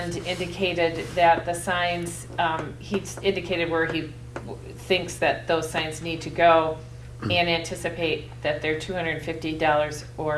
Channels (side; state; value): both; identical; correlation 1.00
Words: indicated that the signs, he's indicated where he thinks that those signs need to go and anticipate that they're $250